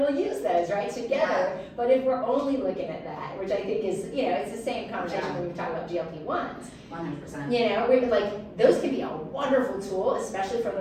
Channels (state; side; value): identical; both; correlation 1.00